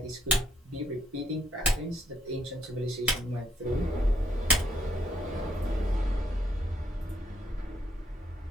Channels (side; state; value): both; normal; correlation 0.72